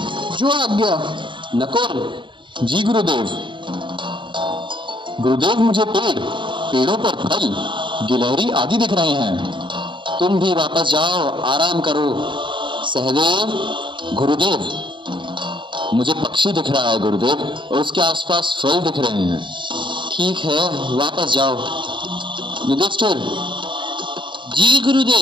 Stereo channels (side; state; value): left; late; 0.23 ms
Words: जो आज्ञा। नकुल। जी गुरुदेव। गुरुदेव, मुझे पेड़ों पर फल, गिलहरी आदि दिख रहे हैं। तुम भी वापस जाओ, आराम करो। सहदेव। गुरुदेव, मुझे पक्षी दिख रहा है गुरुदेव, और उसके आसपास फल दिख रहे हैं। ठीक है, वापस जाओ। युधिष्ठिर। जी